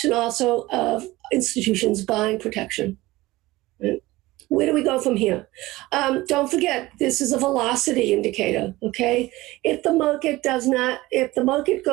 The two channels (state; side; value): quieter; left; 19.0 dB